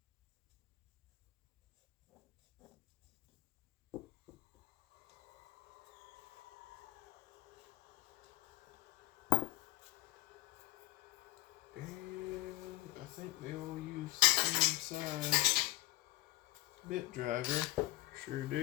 And I think they all use the same size bit driver. Sure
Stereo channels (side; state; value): right; quieter; 18.5 dB